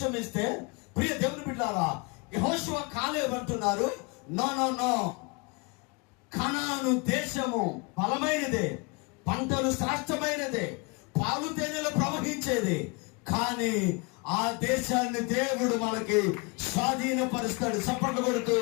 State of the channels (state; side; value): quieter; right; 30.3 dB